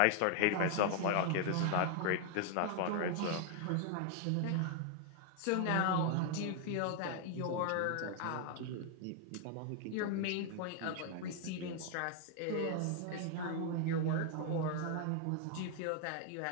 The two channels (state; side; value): different; both; correlation 0.00